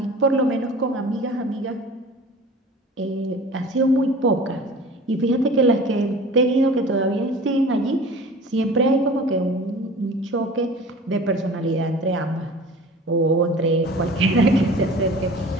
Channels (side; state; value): both; normal; correlation 0.42